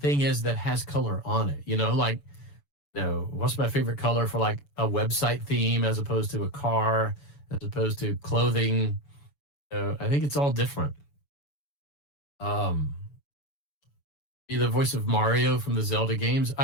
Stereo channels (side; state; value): right; late; 7.0 ms